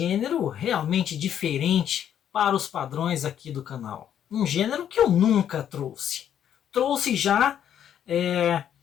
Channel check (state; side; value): quieter; right; 9.7 dB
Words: realmente diferente para os padrões aqui do canal. Um gênero que eu nunca trouxe. Trouxe já